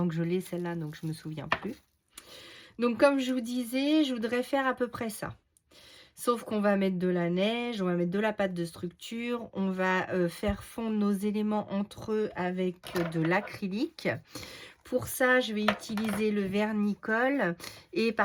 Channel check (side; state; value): both; identical; correlation 1.00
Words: que je l'ai celle-là, donc je ne me souviens plus. Donc comme je vous disais, je voudrais faire à peu près ça. Sauf qu'on va mettre de la neige, on va mettre de la pâte de structure, on va faire fondre nos éléments entre eux avec de l'acrylique. Pour ça, je vais utiliser le vernicole et